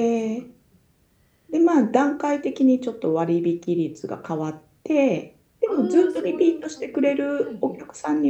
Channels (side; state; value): both; identical; correlation 1.00